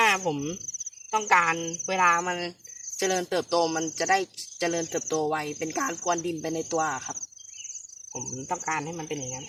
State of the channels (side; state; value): both; identical; correlation 1.00